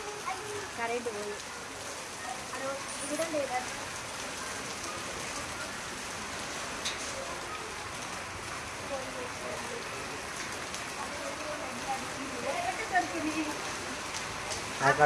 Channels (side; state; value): both; identical; correlation 1.00